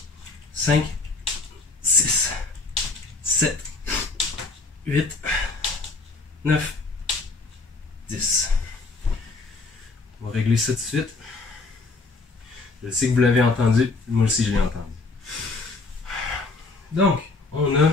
5, 6, 7, 8, 9, 10. On va régler ça tout de suite. Je sais que vous l'avez entendu, moi aussi je l'ai entendu. Donc, on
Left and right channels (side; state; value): right; quieter; 3.6 dB